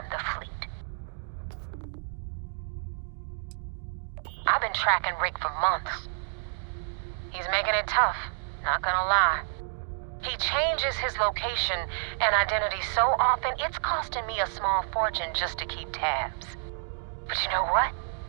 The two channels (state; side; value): silent; left; digital silence